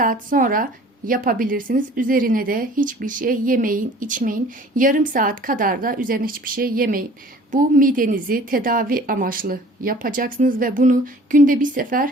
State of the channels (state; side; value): normal; both; correlation 0.49